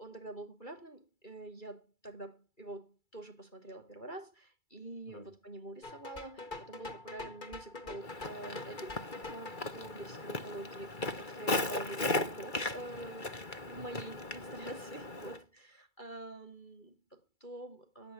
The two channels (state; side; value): late; right; 2.3 ms